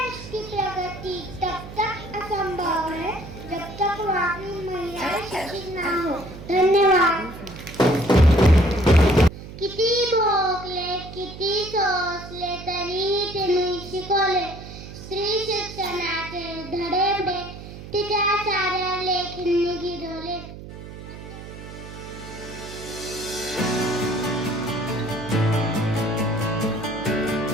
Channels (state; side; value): noise; right; hum, 13 dB below the sound